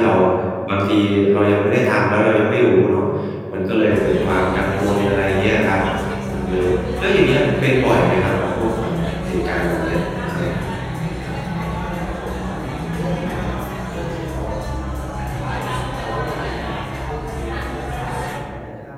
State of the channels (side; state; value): both; identical; correlation 1.00